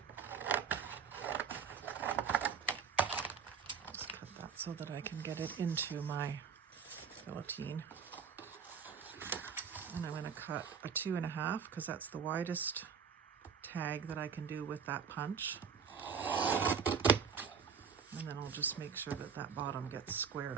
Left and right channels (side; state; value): left; quieter; 6.6 dB